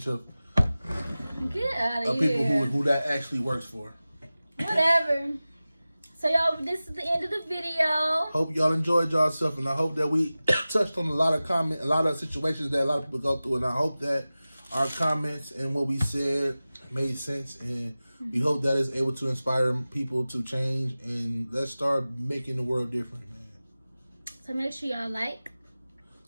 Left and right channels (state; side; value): inverted; both; correlation -0.97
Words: of people who that actually works for. Whatever. So y'all, this is the end of the video. Hope y'all enjoyed yourself, and I hope that we touched on a lot of situations that a lot of people go through, and I hope that our comments and what we said made sense, and we hope that is able to inspire people to change, and let's start making the world different, man. So make sure y'all like,